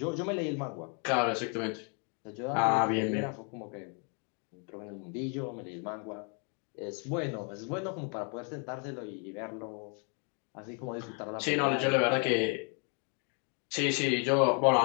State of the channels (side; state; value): right; quieter; 39.1 dB